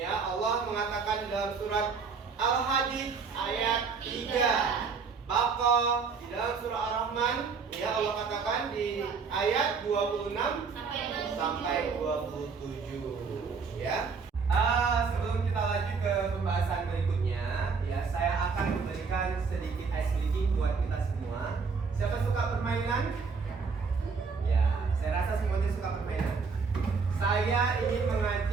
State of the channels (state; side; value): quieter; left; 5.2 dB